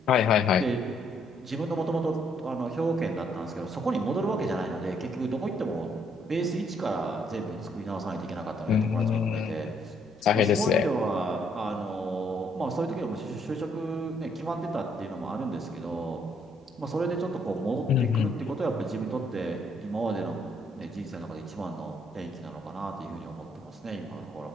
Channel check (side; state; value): both; normal; correlation 0.69